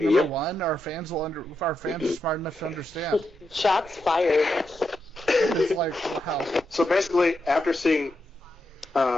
number one. Our fans are smart enough to understand. Shots fired. It's like, wow. So basically, after seeing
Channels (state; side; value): normal; both; correlation 0.85